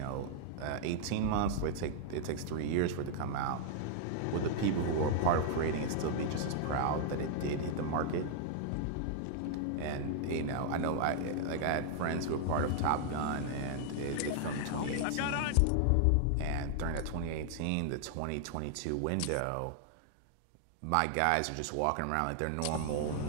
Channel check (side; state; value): both; different; correlation -0.01